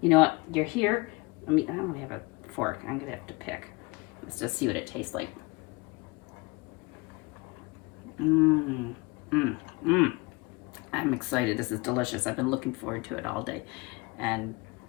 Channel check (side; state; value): right; quieter; 25.9 dB